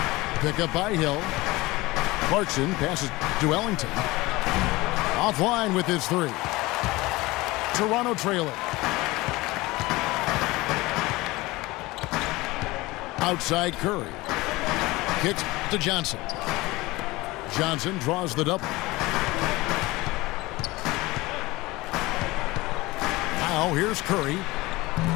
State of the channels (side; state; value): right; quieter; 20.8 dB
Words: Pick up by Hill. Clarkson passes to Ellington. Offline with his 3. Toronto trailing. Outside Curry. Kicks to Johnson. Johnson draws the double. Now here's Curry.